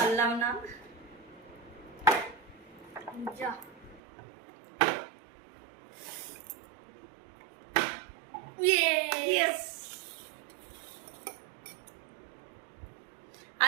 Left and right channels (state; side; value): drops out; left; at 4.0 s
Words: না। যা। ইয়েস।